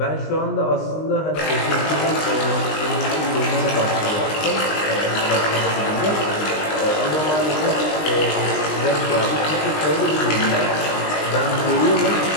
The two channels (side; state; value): right; late; 19 ms